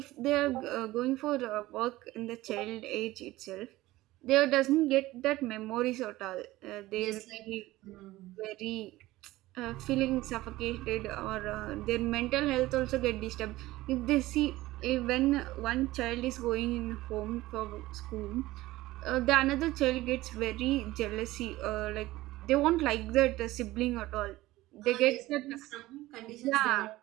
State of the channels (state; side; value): quieter; left; 17.6 dB